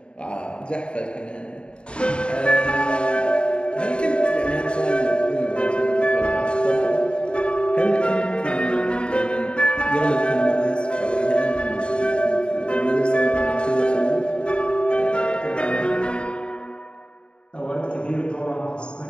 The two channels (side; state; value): right; late; 0.054 ms